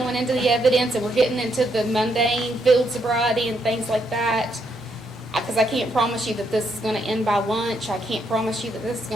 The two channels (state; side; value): normal; both; correlation 0.76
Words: into the evidence and we're getting into the mundane field sobriety and things like that, because I can't promise you that this is going to end by lunch. I can't promise you that this is